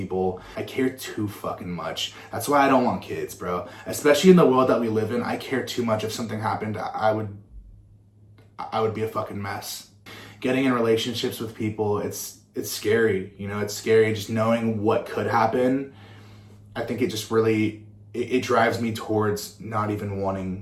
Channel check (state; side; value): identical; both; correlation 1.00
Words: I care too fucking much. That's why I don't want kids, bro. Especially in the world that we live in, I care too much. If something happened, I would be a fucking mess. Getting in relationships with people, it's scary, you know, it's scary just knowing what could happen. I think it just really, it drives me towards not even